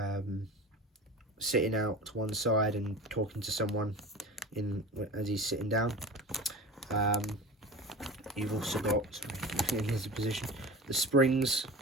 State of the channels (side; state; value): both; normal; correlation 0.33